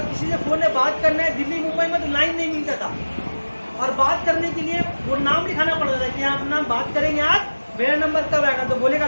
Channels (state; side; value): inverted; both; correlation -1.00